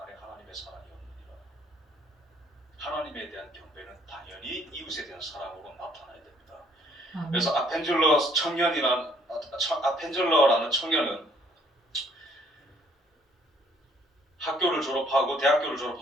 하나님의 사랑이 없느니라. 하나님에 대한 경배는 당연히 이웃에 대한 사랑으로 나타나야 됩니다. 그래서 아펜젤러라는 청년은 학교를 졸업하고 대학교를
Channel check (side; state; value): both; normal; correlation 0.64